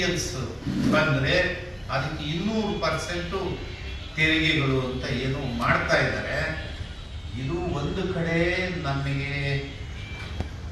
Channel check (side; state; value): both; identical; correlation 1.00